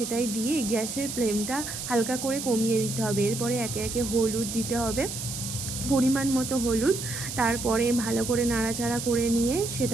দিয়ে গ্যাসের ফ্লেমটা হালকা করে কমিয়ে দিতে হবে। এরপরে একে একে হলুদ দিতে হবে, পরিমাণ মতো হলুদ। তারপরে ভালো করে নাড়াচাড়া করে নিয়ে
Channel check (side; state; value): right; noise; hiss, 6 dB below the sound